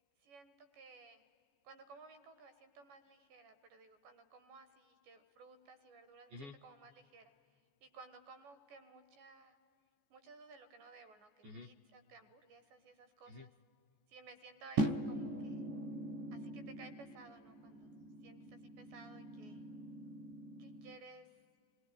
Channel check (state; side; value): late; left; 14 ms